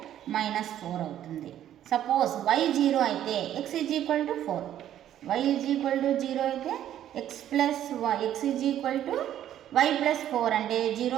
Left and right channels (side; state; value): left; quieter; 11.4 dB